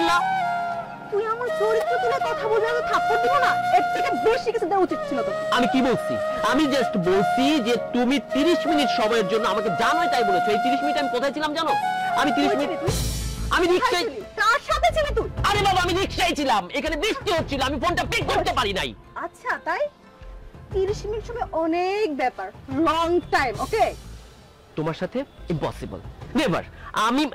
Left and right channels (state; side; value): identical; both; correlation 1.00